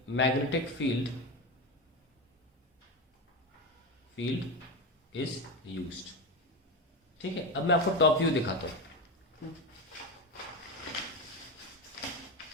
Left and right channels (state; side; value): normal; both; correlation 0.18